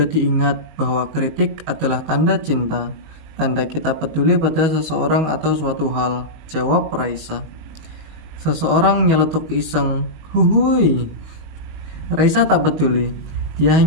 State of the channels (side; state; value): left; late; 19 ms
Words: diingat bahwa kritik adalah tanda cinta, tanda kita peduli pada seseorang atau suatu hal. Jawab Raisa. Seseorang nyeletuk iseng, "Huhui." Raisa tak peduli. Dia